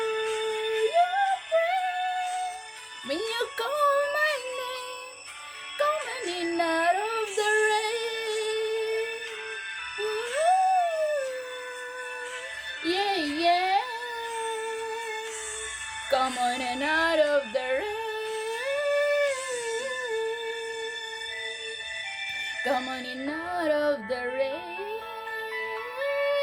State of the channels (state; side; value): identical; both; correlation 1.00